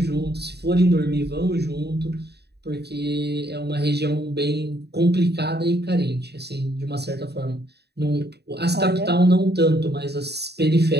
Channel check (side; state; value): left; late; 0.48 ms